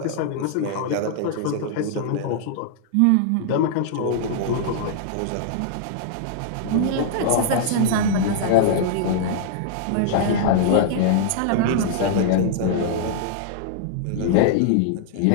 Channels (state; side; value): different; both; correlation -0.01